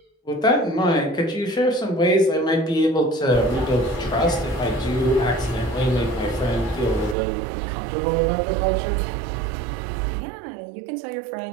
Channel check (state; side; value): drops out; left; at 7.2 s